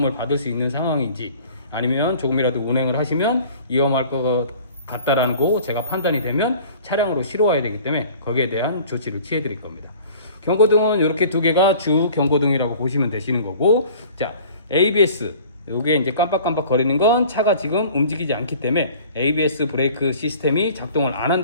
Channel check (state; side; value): inverted; both; correlation -0.48